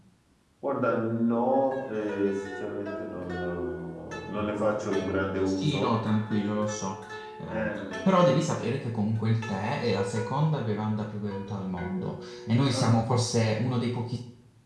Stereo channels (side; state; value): both; identical; correlation 1.00